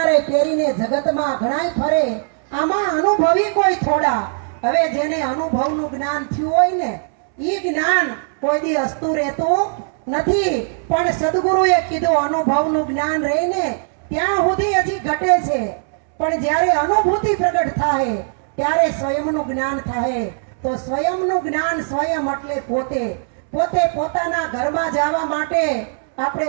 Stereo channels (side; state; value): left; silent; 66 dB below the other